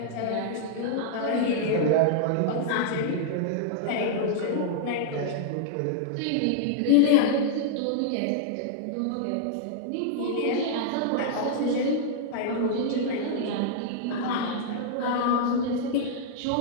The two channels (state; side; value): different; both; correlation -0.01